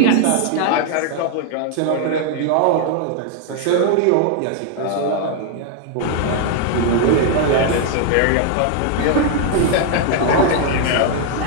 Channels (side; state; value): both; different; correlation 0.00